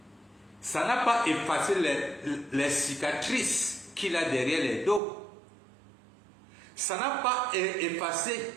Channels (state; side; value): drops out; left; at 5.0 s